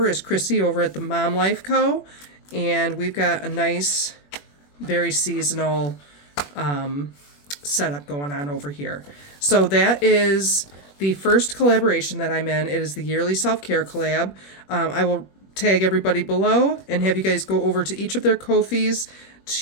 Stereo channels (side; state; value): right; late; 21 ms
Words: is Chrissy over at the Mom Life Co. And we've got a nice, very seasonal setup going on over here. So that is the first collaboration that I'm in. It is the yearly self-care collab. I will tag everybody below and have you guys go over to each of their Ko-fis